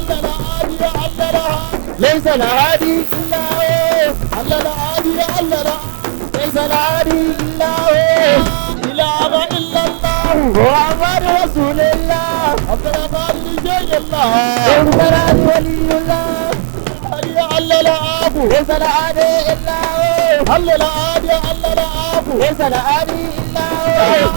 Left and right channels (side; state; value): left; silent; digital silence